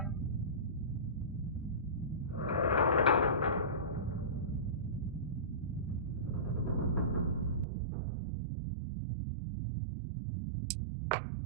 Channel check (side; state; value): left; drops out; at 7.7 s